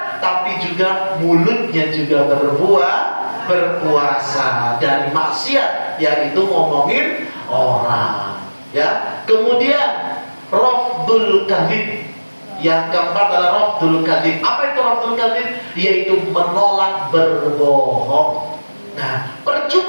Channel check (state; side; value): inverted; both; correlation -1.00